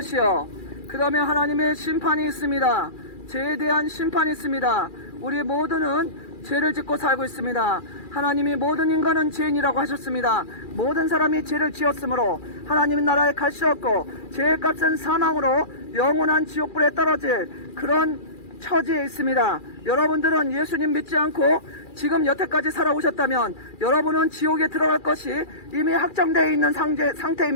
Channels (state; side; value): late; right; 2.4 ms